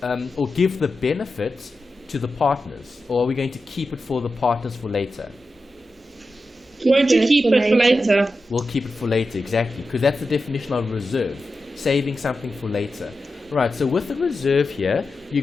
or give the benefit to the partners, or are we going to keep it for the partners for later? Won't you keep it for later? We'll keep it for later, exactly, because that's the definition of reserve, saving something for later. Right, so with the reserve here, you're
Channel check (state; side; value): normal; both; correlation 0.91